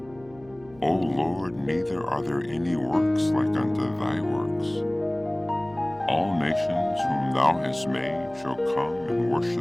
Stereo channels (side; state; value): right; noise; hum, 25 dB below the sound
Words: O Lord, neither are there any works like unto thy works. All nations whom thou hast made shall come and